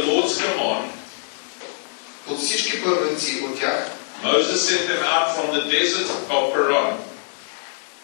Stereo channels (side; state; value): right; silent; digital silence